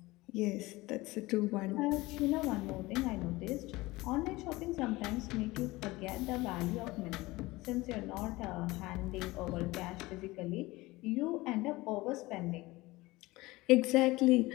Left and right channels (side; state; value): right; quieter; 20.5 dB